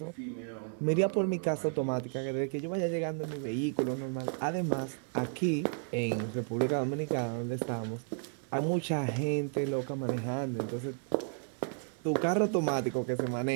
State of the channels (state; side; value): silent; left; 56 dB below the other